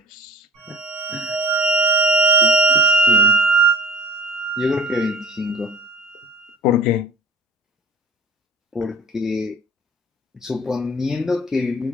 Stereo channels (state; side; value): normal; both; correlation 0.41